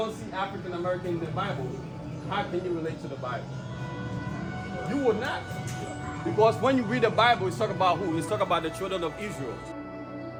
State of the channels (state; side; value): identical; both; correlation 1.00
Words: see African American in the Bible, how can you relate to the Bible? You would not. Because when you read the Bible, it's talking about who? It's talking about the children of Israel.